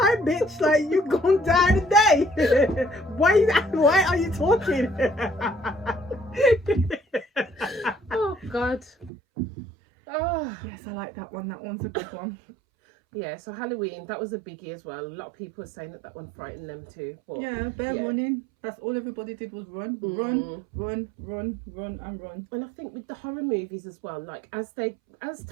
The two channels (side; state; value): left; drops out; at 9.1 s